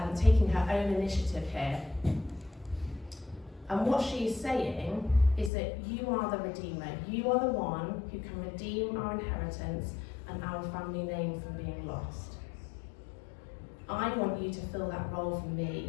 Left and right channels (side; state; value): right; drops out; at 5.5 s